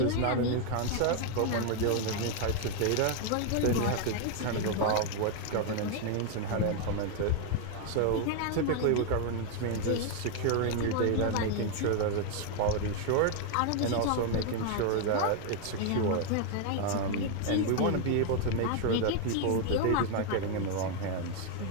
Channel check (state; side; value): different; both; correlation 0.00